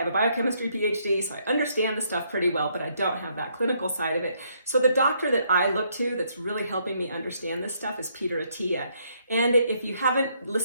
a biochemistry PhD, so I understand the stuff pretty well, but I don't have that clinical side of it. So the doctor that I look to that's really helping me understand this stuff is Peter Attia. And if you haven't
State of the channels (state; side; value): inverted; both; correlation -0.72